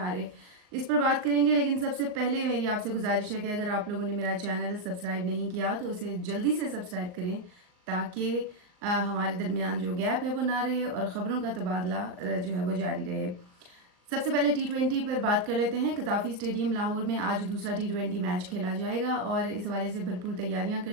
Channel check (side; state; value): left; late; 39 ms